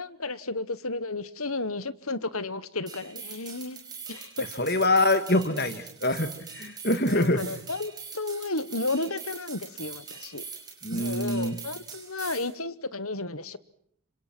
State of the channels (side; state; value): both; normal; correlation -0.11